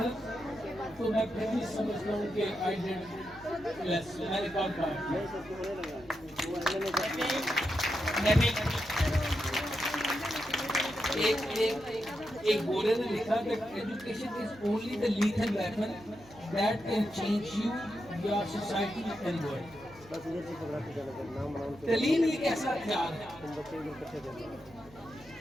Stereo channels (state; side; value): noise; right; hum, 23 dB below the sound